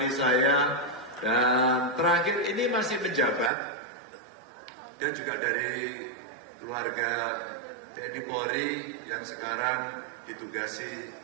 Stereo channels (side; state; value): left; drops out; at 3.5 s